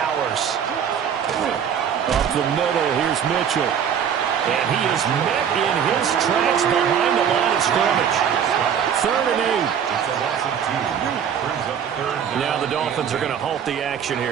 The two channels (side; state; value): left; quieter; 8.2 dB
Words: Up the middle, here's Mitchell. And he is met in his tracks behind the line of scrimmage. 3rd and 8. It's a loss of 2. Brings up 3rd. Now the Dolphins are going to halt the action